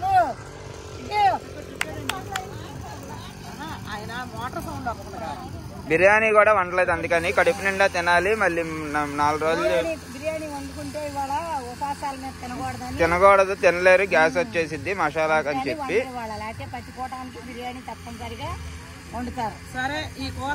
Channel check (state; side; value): identical; both; correlation 1.00